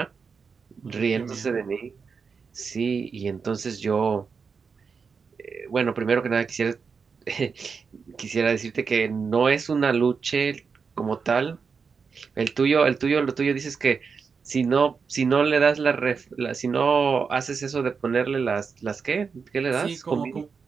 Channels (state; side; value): quieter; left; 5.5 dB